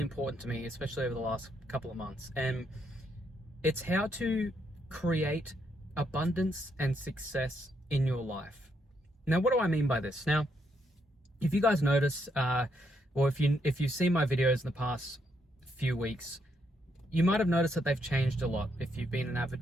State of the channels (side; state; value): both; normal; correlation 0.76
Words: important to me, especially over the last couple of months, and it's how to create abundance and success in your life. Now, what do I mean by this? Now, if you guys notice, or if you've seen my videos in the past few weeks, you might have noticed that they've changed a lot. If you've been an